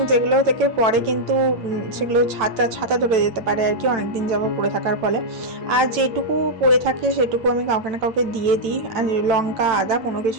যেগুলো থেকে পরে কিন্তু সেগুলো ছাতা ধরে যেতে পারে আর কি, অনেকদিন যাবত পড়ে থাকার ফলে। আর যেটুকু পড়ে থাকে সেটুকু আমি কাউকে না কাউকে দিয়ে দিই, আর লঙ্কা আদা কোনো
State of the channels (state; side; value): late; left; 9.0 ms